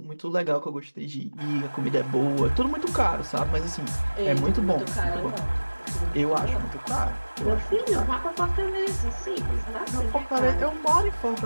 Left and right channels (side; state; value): both; inverted; correlation -1.00